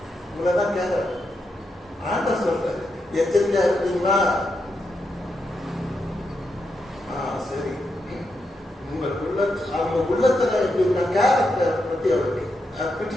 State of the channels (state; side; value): normal; both; correlation 0.84